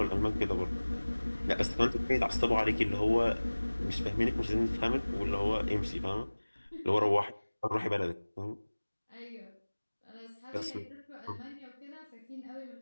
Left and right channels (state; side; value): inverted; both; correlation -1.00